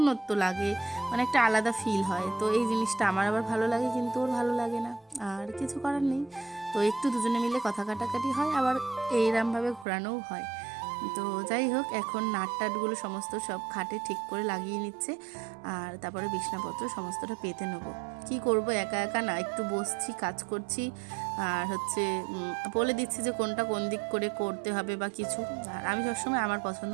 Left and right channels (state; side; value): drops out; left; at 9.9 s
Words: লাগে, মানে একটা আলাদা ফিল হয়। তো এই জিনিসটা আমার আবার ভালো লাগে, কিন্তু ওর ভালো লাগে না, আর কিছু করার নেই। তো একটু দুজনে মিলে কথা কাটাকাটি হয়, আবার এইরমভাবে ঘোরানোও হয়। তো যাই হোক, এখন নাটটাটগুলো সমস্ত সব খাটে ঠিক করে লাগিয়ে নিচ্ছে, আর তারপরে বিছনাপত্র সমস্তটা পেতে নেবো। কি করব, একা একা না, একটু বসছি, কাজ করছি, আর হচ্ছে বলে দিচ্ছি যে কোনটা কোন দিক করে করতে হবে বা কিছু। আর আমি সবসময় আমার পছন্দ